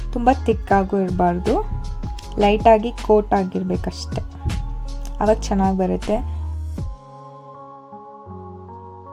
ತುಂಬ ತಿಕ್ಕಾಗೂ ಇರಬಾರ್ದು, ಲೈಟಾಗಿ ಕೋಟ್ ಆಗಿರಬೇಕಷ್ಟೆ, ಆವಾಗ ಚೆನ್ನಾಗಿ ಬರುತ್ತೆ.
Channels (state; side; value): identical; both; correlation 1.00